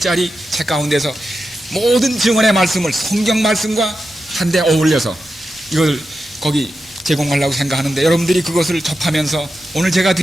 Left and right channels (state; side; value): normal; both; correlation 0.90